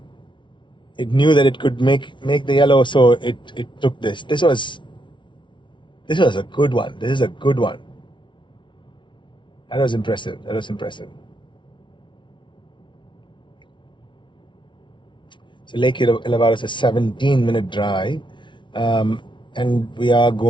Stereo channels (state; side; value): late; right; 0.24 ms